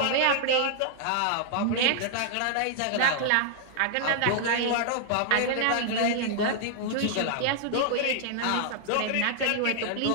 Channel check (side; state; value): both; different; correlation -0.01